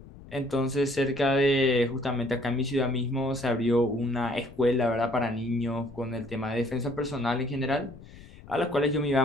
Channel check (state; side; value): noise; left; rumble, 19 dB below the sound